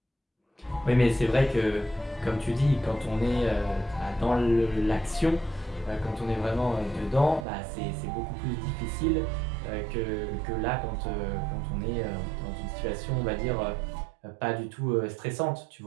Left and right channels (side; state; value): left; drops out; at 7.5 s